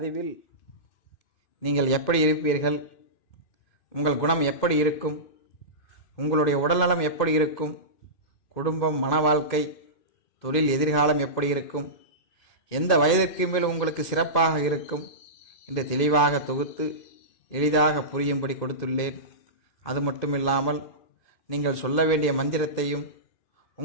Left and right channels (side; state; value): right; late; 2.5 ms